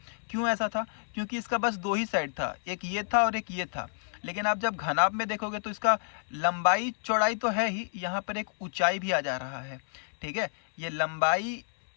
क्यों ऐसा था? क्योंकि इसका बस दो ही साइड था, एक ये था और एक ये था। लेकिन आप जब घनाभ में देखोगे तो इसका लंबाई चौड़ाई तो है ही, यहाँ पर एक ऊंचाई भी आ जा रहा है। ठीक है, ये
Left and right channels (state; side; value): silent; right; digital silence